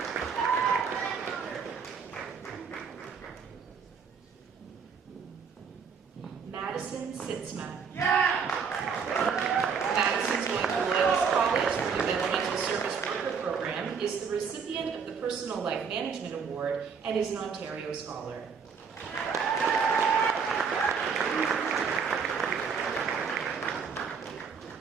Madison Sitzma. Madison's going to Loyalist College for the Developmental Service Worker program, is the recipient of the Personal Life Management Award, and is an Ontario Scholar.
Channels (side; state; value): left; quieter; 6.1 dB